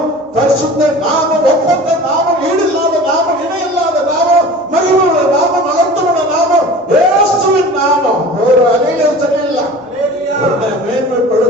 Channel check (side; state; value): both; normal; correlation 0.40